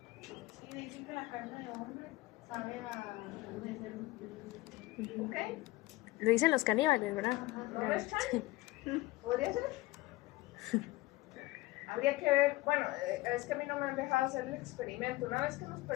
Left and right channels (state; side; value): quieter; right; 19.3 dB